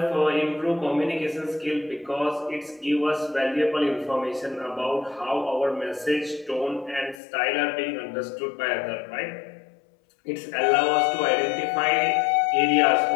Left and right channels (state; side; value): drops out; right; at 7.2 s